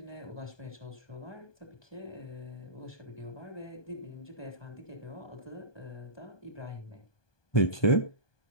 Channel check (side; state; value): right; late; 1.2 ms